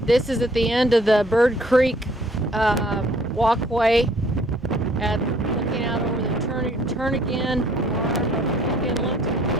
is at the end of the Bird Creek walkway, looking out over the Turnagain Arm of Cook Inlet.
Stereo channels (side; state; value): both; normal; correlation 0.60